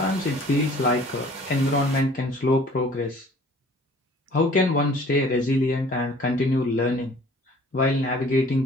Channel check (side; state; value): both; normal; correlation 0.52